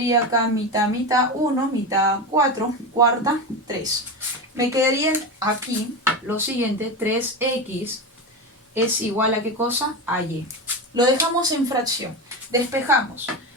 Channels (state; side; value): normal; both; correlation 0.20